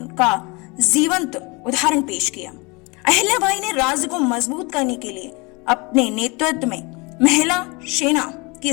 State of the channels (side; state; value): right; quieter; 27.6 dB